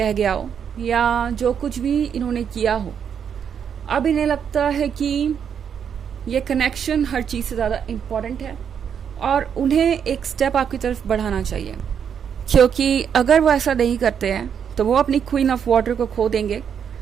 गया हो या जो कुछ भी इन्होंने किया हो, अब इन्हें लगता है कि ये कनेक्शन हर चीज़ से ज़्यादा इम्पॉर्टेंट है और उन्हें एक स्टेप आपकी तरफ बढ़ाना चाहिए। क्योंकि अगर वो ऐसा नहीं करते हैं तो वो अपनी क्वीन ऑफ वाटर को खो देंगे।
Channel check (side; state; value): left; quieter; 7.8 dB